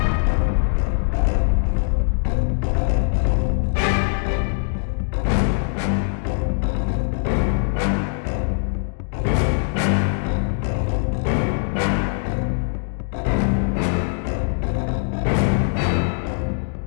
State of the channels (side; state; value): right; silent; digital silence